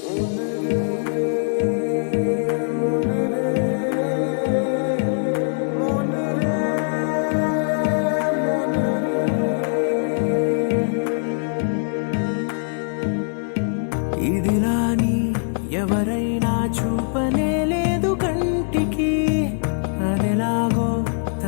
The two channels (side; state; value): right; silent; digital silence